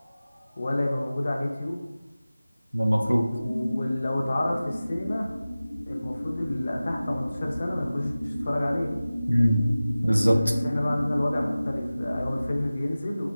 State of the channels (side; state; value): both; inverted; correlation -0.97